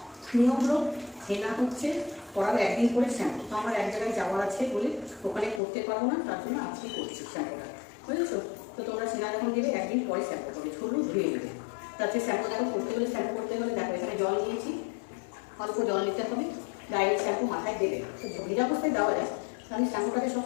নিয়ম হলো হেনা হচ্ছে করার একদিন করে শ্যাম্পু, তো আমার এক জায়গায় যাওয়ার আছে বলে ওখানে করতে পারবো না, তার জন্য আজকে করছি শ্যাম্পুটা, বুঝেছো? তো তোমরা সেনা যখন দেবে একদিন পরে শ্যাম্পু করবে, ঝুলু ধুয়ে নেবে। তাতে শ্যাম্পু দেখো করতে হলে শ্যাম্পু করতে হলে দেখো এখানে জল নিয়েছি, অল্প জল নিতে হবে, ডাইরেক্ট শ্যাম্পু মাথায় দেবে। তো ভিজা অবস্থায় দেওয়া যায়, আমি শ্যাম্পুটাকে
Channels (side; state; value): right; drops out; at 5.6 s